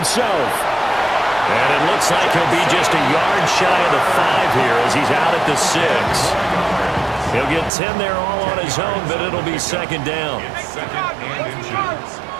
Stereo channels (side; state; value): left; drops out; at 7.7 s